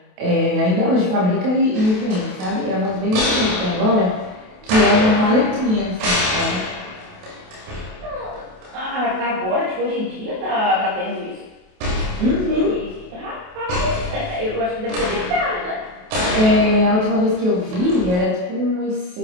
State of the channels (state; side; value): late; left; 28 ms